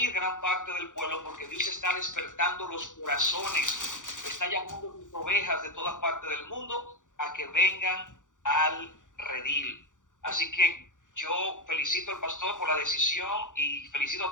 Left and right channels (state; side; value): late; right; 0.87 ms